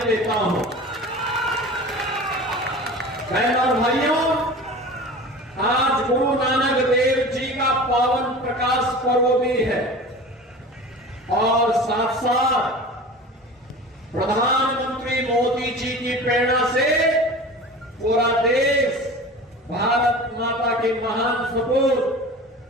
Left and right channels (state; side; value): normal; both; correlation 0.36